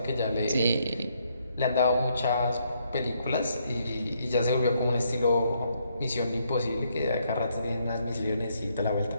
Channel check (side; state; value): both; inverted; correlation -0.73